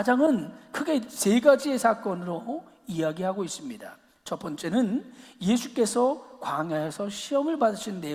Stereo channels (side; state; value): both; identical; correlation 1.00